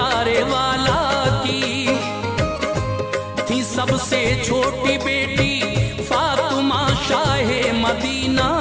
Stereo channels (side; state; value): both; identical; correlation 1.00